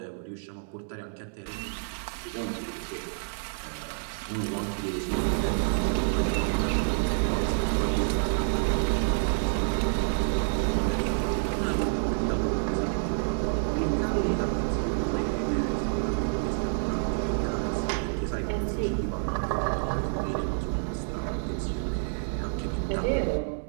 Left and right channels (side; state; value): left; silent; digital silence